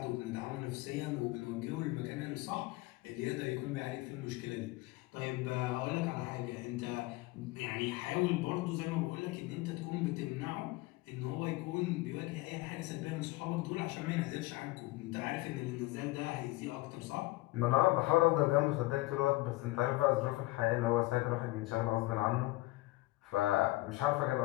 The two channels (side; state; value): right; quieter; 20.0 dB